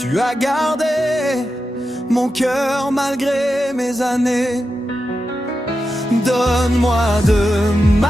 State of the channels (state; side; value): normal; both; correlation 0.89